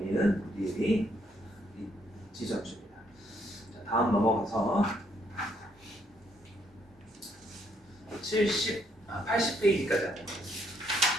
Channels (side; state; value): both; normal; correlation 0.71